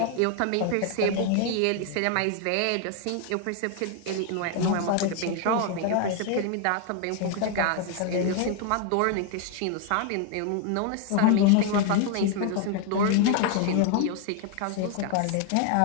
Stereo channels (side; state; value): both; different; correlation 0.00